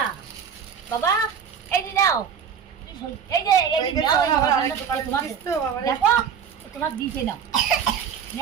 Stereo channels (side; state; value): left; quieter; 7.3 dB